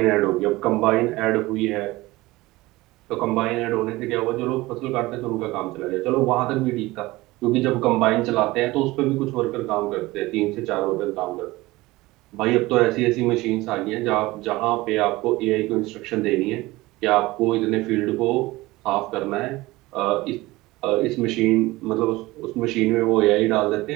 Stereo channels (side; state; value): left; quieter; 19.8 dB